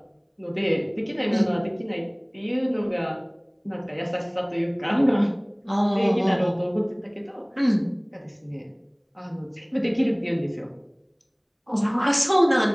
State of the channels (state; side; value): identical; both; correlation 1.00